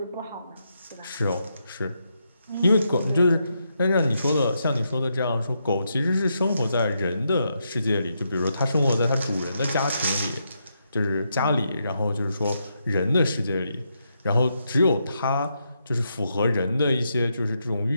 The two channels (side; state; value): both; inverted; correlation -0.82